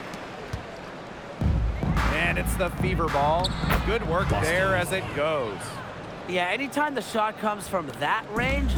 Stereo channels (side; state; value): both; identical; correlation 1.00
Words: And it's the Fever ball. Good work there as it goes. Yeah, anytime the shot comes from that range,